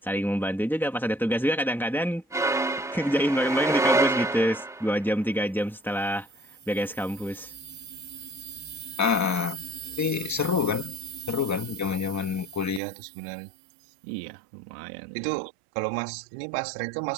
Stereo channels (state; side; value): drops out; left; at 12.8 s